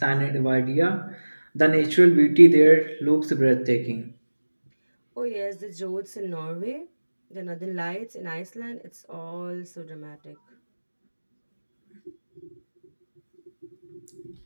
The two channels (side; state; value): both; inverted; correlation -1.00